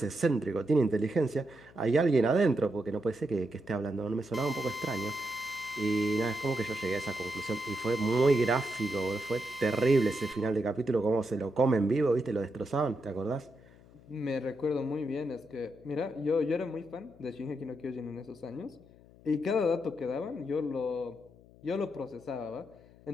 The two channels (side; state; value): left; noise; hum, 24 dB below the sound